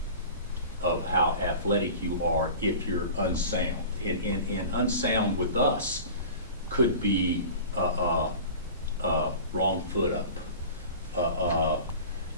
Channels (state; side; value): inverted; both; correlation -0.38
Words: how athletic you are if you're unsound. And unsound with us could be wrong foot up.